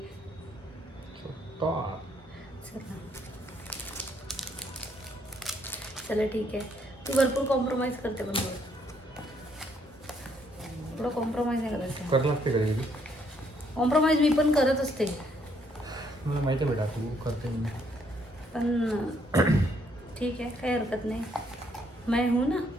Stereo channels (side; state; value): both; normal; correlation 0.70